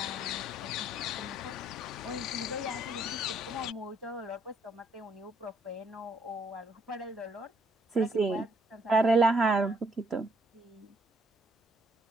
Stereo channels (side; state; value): both; normal; correlation 0.68